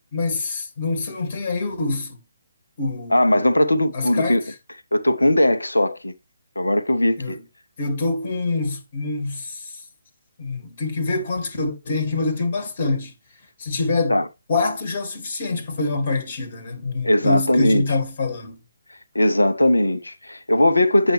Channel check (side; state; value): both; inverted; correlation -0.89